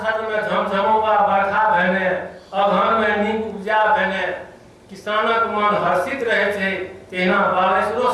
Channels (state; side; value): identical; both; correlation 1.00